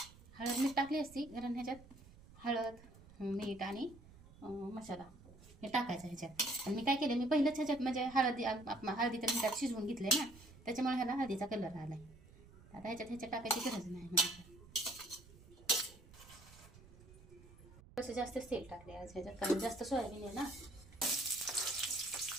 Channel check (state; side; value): noise; right; rumble, 21 dB below the sound